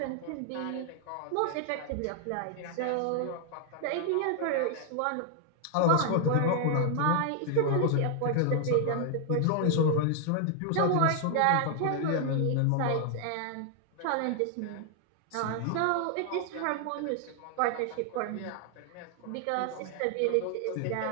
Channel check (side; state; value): both; different; correlation 0.00